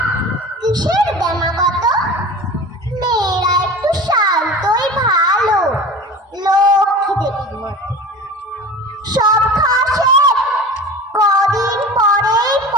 কিসের দেমাগত? মেয়েরা একটু শান্তই ভালো, লক্ষ্মী দেবীর মতো। সব খাওয়া শেষ, কদিন পরেই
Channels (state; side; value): normal; both; correlation 0.35